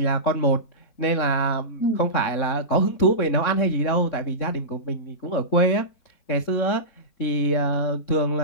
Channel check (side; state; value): right; late; 3.6 ms